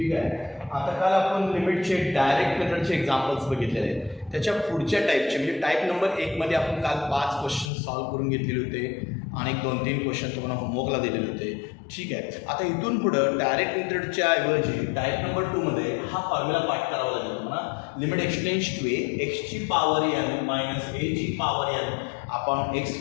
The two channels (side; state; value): right; drops out; at 7.7 s